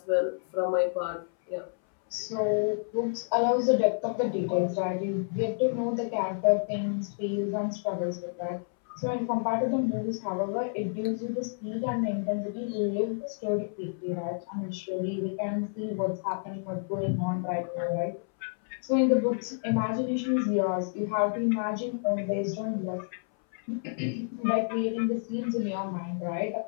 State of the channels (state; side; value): silent; right; 58 dB below the other